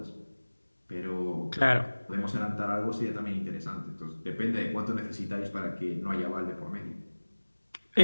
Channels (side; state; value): both; inverted; correlation -1.00